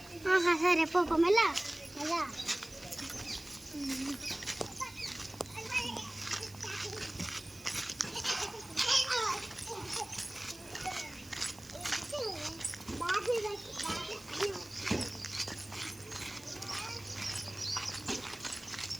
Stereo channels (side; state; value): right; noise; hiss, 20 dB below the sound